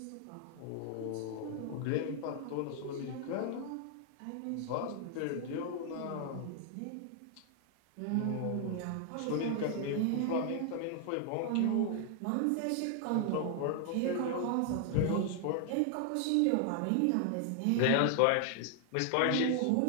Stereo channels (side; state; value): both; different; correlation 0.00